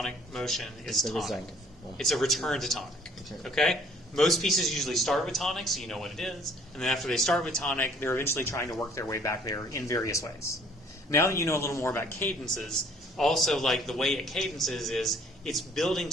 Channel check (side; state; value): both; normal; correlation 0.58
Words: motion is tonic. It's a return to tonic. Okay? Most pieces usually start with tonic, so you know what it is. And then after they start with tonic, they're eventually trying to work their way back there in various ways. Now that you know a little more about cadences, also, like, the way it cadences is it's building